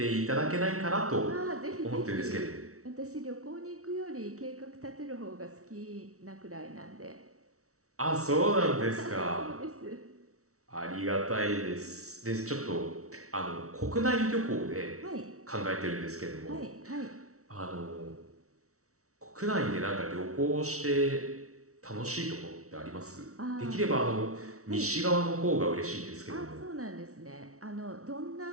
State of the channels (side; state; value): left; late; 0.64 ms